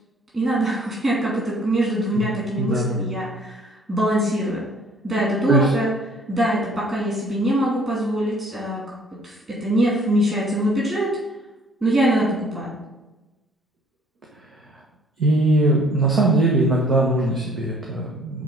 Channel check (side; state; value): both; normal; correlation 0.57